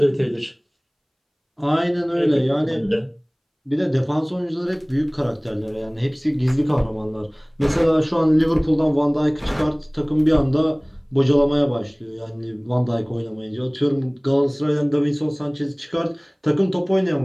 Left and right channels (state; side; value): identical; both; correlation 1.00